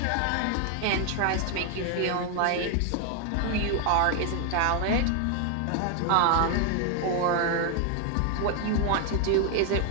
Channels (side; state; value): both; different; correlation 0.00